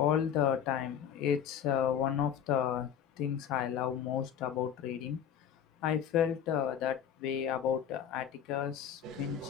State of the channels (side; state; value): right; quieter; 8.8 dB